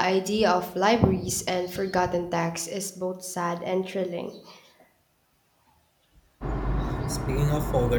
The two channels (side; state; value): both; identical; correlation 1.00